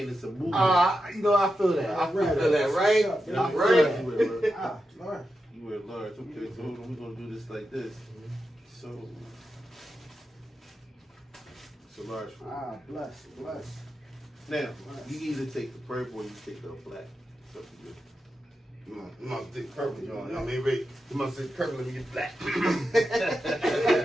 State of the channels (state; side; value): normal; both; correlation 0.89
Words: it's a movement. I feel that. I feel Feel that, that. right? Yeah, Right. You wear large. Lord. You wear large. Okay, so hold on, we're gonna do this like this. So it's a large for you. Bless. Now, you either take the purple or you take the black. It's up to you. You must take purple, John. I mean, Rick, you must take purple and get black.